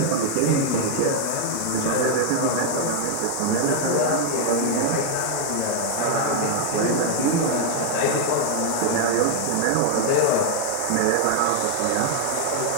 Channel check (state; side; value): different; both; correlation 0.00